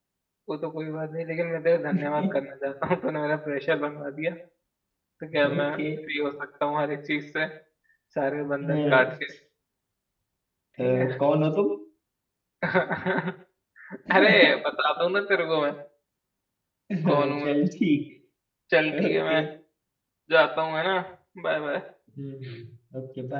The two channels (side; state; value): both; identical; correlation 1.00